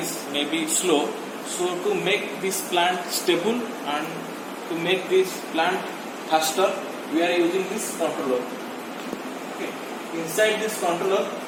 maybe slow. So to make this plant stable and to make this plant faster, we are using this controller. Okay. Inside this controller,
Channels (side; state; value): both; identical; correlation 1.00